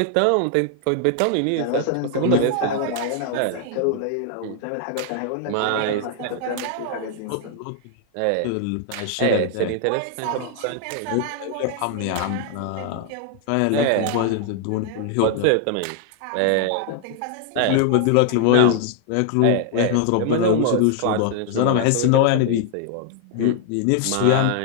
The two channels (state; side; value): different; both; correlation 0.00